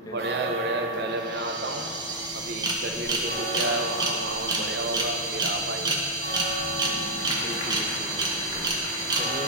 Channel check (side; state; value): both; normal; correlation -0.03